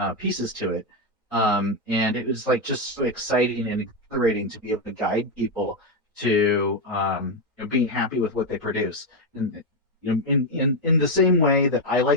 pieces to it. And it was like just so exciting and exhilarating to be able to guide people to being happy with what they produce. And in the same way that I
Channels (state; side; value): normal; both; correlation 0.05